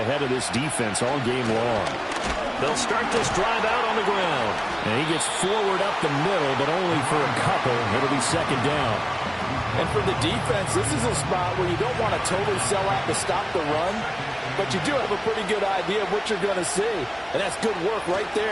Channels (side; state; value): both; identical; correlation 1.00